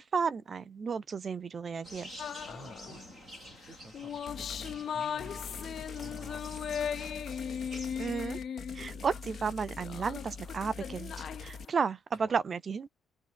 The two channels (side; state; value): both; normal; correlation 0.79